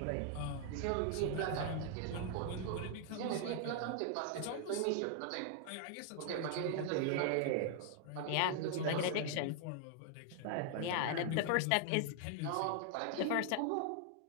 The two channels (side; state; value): both; different; correlation 0.00